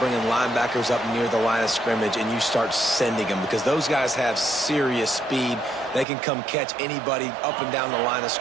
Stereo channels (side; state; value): left; drops out; at 6.1 s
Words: linebackers up near the line of scrimmage and you start sending them, because those guys have serious speed. They can come catch anybody up and down the line of